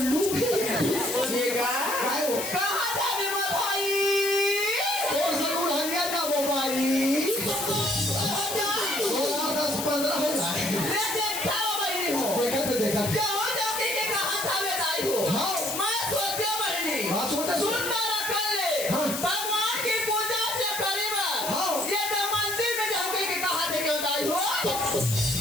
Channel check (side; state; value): left; noise; hiss, 4 dB below the sound